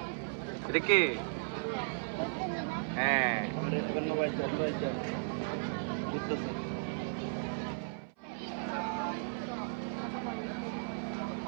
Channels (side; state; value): left; silent; 54 dB below the other